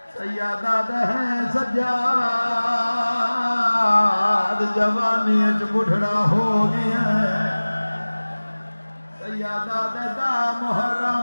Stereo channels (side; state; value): both; inverted; correlation -1.00